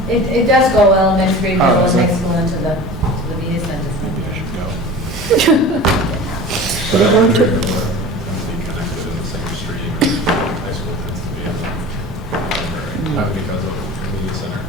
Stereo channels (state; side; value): normal; both; correlation 0.37